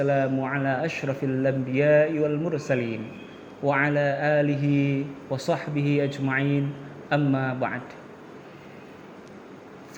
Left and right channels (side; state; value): both; identical; correlation 1.00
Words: ala ashrafil anbiya'i wal mursalin. Wa ala alihi wa sahbihi ajma'in. Amma ba'd.